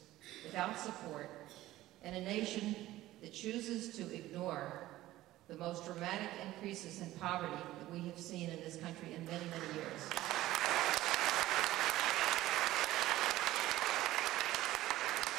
without support, in a nation that chooses to ignore the most dramatic increases in poverty that we have seen in this country in many, many years.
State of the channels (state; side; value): quieter; left; 15.8 dB